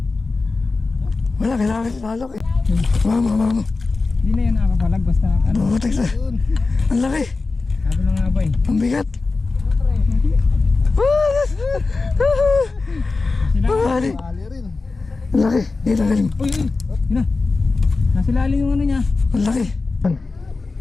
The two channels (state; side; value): quieter; right; 3.8 dB